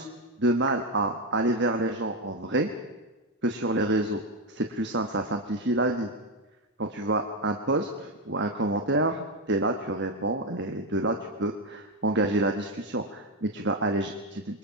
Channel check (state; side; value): normal; both; correlation 0.07